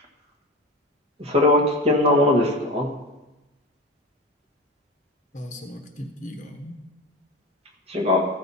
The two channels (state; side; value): normal; both; correlation 0.26